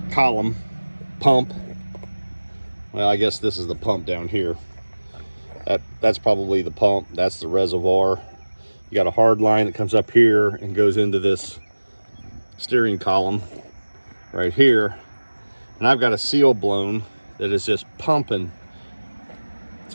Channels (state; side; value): inverted; both; correlation -1.00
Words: column pump. Well, I guess this is the pump down here. That's probably the pump. That's the reservoir. You got a hard line that comes up here and goes into this steering column right here. And I've got a seal blown that is just pumping. As